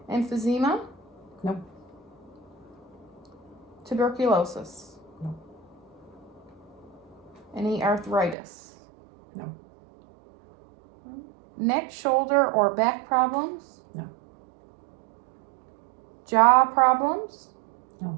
Emphysema? No. Tuberculosis? No. Any arthritis? No. Neck, shoulder, or back problems? No. Jaw problems?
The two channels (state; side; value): drops out; left; at 8.3 s